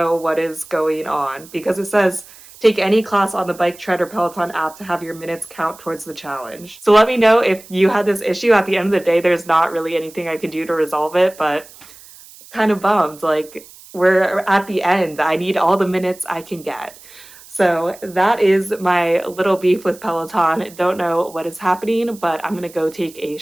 what is going on because it says take any class on the Bike Tread or Peloton app to have your minutes count towards the challenge. So let me know if you had this issue. At the end of the day, there's not really anything I can do to resolve it, but kind of bummed. Like, we're at the end. I need all the minutes I can get. So that is my little beef with Peloton. Don't know what is happening, but I'm gonna go take a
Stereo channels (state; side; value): noise; right; hiss, 21 dB below the sound